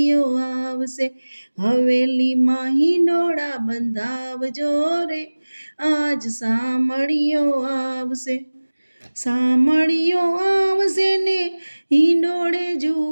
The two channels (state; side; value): inverted; both; correlation -1.00